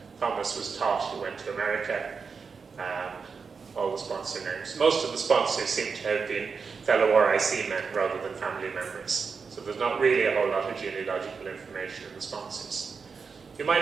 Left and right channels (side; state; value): left; quieter; 5.3 dB